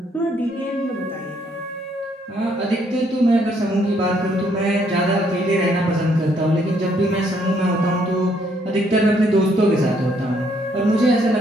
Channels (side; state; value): both; normal; correlation 0.69